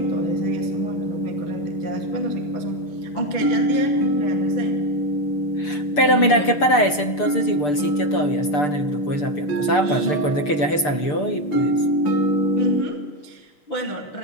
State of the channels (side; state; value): right; late; 6.8 ms